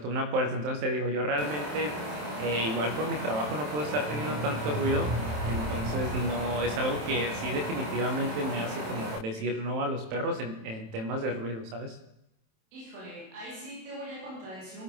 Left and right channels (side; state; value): left; late; 27 ms